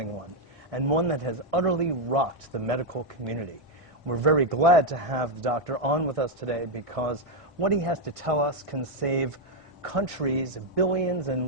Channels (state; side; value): normal; both; correlation 0.02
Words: one, and one that has utterly rocked the medical community. We're very glad to have the doctor on with us today because what he has to tell us can save countries billions